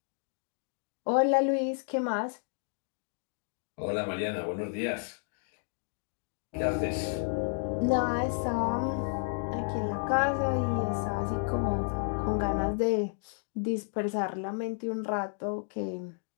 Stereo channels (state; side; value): silent; right; 57 dB below the other